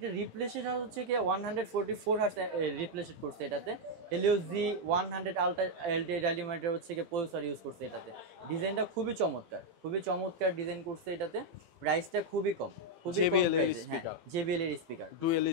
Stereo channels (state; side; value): late; left; 18 ms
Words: রিপ্লেসেড হচ্ছে কি 144 হার্টজ রিপ্লেসেড করছে এটাতে। হেলিওস G100 আলট্রা এলটিডি ডাইনামাইটার হচ্ছে কি প্রসেসর ইউজ করছে এটাতে। ডিজাইনটা খুবই চমৎকার ডিজাইন করছে এটাতে। প্রাইসটা খুবই কম, খুবই কম প্রাইসে। হ্যাঁ, JBL এর speaker, dual